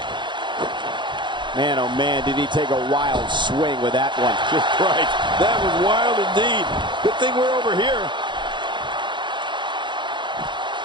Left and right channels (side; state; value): left; late; 0.23 ms